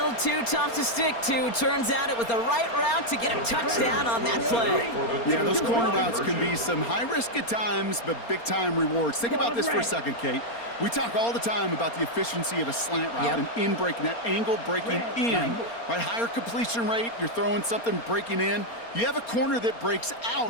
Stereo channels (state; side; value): late; right; 4.3 ms